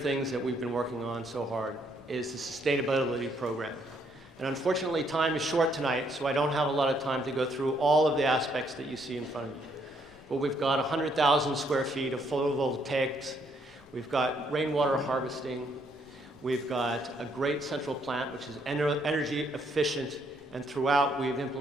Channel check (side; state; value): both; normal; correlation 0.70